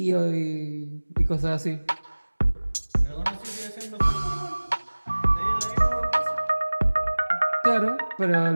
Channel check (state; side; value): inverted; both; correlation -1.00